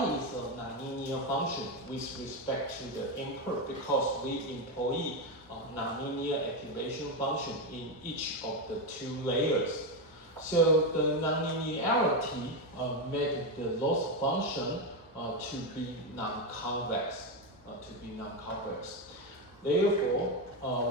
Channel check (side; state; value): both; normal; correlation 0.10